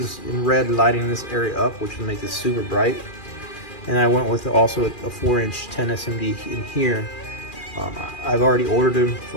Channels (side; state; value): right; late; 2.4 ms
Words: in red lighting this area up, which will make this super bright. And I went with also a 4-inch 10 SMD in here. I've already ordered them. It's